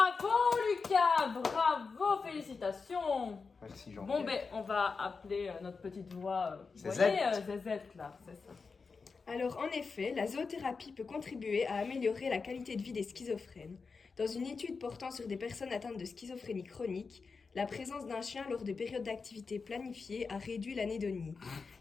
Lucas! Bravo! Félicitations! Merci, Jean. Bon, on va appeler notre petite voix, vous Zézette. voyez, Zézette, là, c'est ça. Alors, en effet, la zoothérapie peut contribuer à améliorer la qualité de vie des schizophrènes. Dans une étude portant sur des personnes atteintes de schizophrénie chronique, la présence d'un chien lors de périodes d'activité planifiées a réduit l'anédonie.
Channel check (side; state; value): right; quieter; 4.8 dB